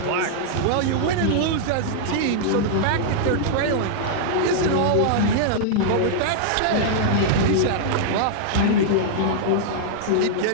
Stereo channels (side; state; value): both; different; correlation -0.01